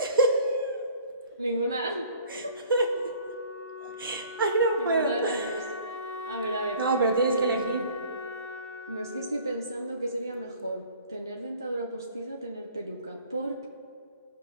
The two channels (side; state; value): both; inverted; correlation -0.52